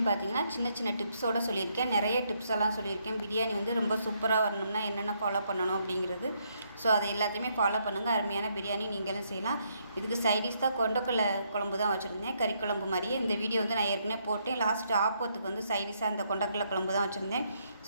பார்த்திங்கன்னா சின்ன சின்ன டிப்ஸோடு சொல்லியிருக்கேன், நிறைய டிப்ஸ் எல்லாம் சொல்லியிருக்கேன். பிரியாணி வந்து ரொம்ப சூப்பராக வரணும்னா என்னென்ன ஃபாலோ பண்ணணும் அப்படிங்கிறது. ஸோ அதை எல்லாத்தையுமே ஃபாலோ பண்ணுங்கள். அருமையான பிரியாணி நீங்களும் செய்யலாம். இதுக்கு சைடிஷ் தான் கொண்டக்கடலை குழம்பு தான் வச்சுருந்தேன், கறி குழம்பு மாதிரியே. இந்த வீடியோ வந்து நான் ஏற்கனவே போட்டேன். லாஸ்ட்டு ஆப்பத்துக்கு வந்து சைடிஷாக அந்த கொண்டக்கடலை குழம்பு தான் வச்சுருந்தேன்.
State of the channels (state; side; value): inverted; both; correlation -0.74